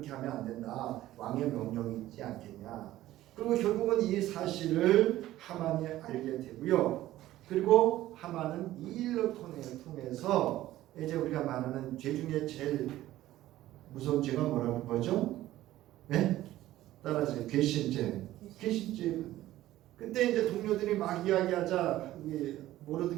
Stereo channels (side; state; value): left; quieter; 14.9 dB